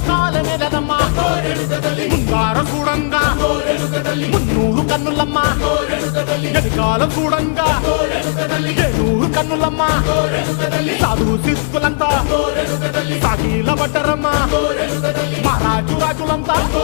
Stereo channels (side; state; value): right; silent; digital silence